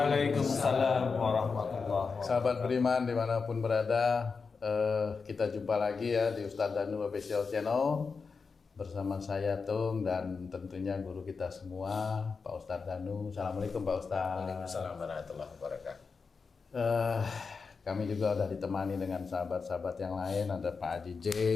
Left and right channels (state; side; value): quieter; right; 5.0 dB